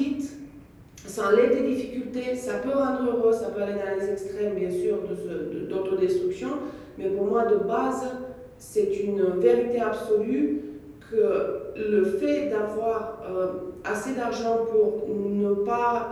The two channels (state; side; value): identical; both; correlation 1.00